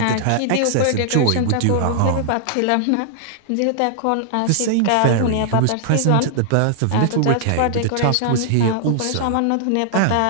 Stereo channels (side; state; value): both; different; correlation 0.00